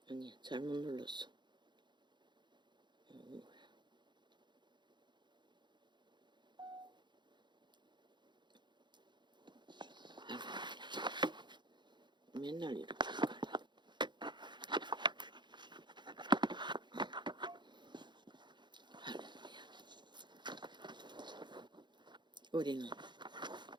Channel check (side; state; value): left; late; 0.22 ms